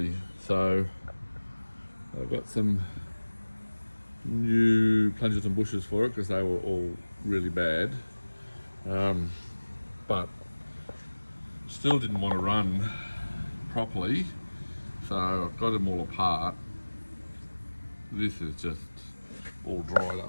so I got some new plungers and bushers for it because they were all really bad. But still didn't want to run properly, so I've got them all apart. This is just all dried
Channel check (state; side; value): inverted; both; correlation -1.00